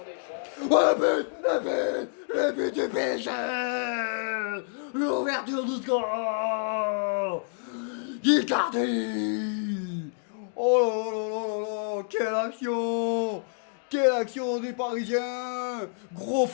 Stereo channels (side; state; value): right; silent; digital silence